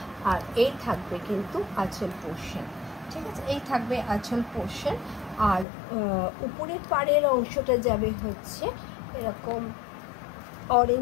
আর এই থাকবে কিন্তু আঁচল পোর্শন। ঠিক আছে, এই থাকবে আঁচল পোর্শন, আর উপরের পাড়ের অংশটা যাবে হচ্ছে এরকম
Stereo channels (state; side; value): drops out; right; at 5.7 s